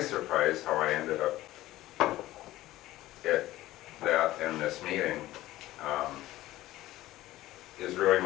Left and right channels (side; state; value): right; quieter; 16.0 dB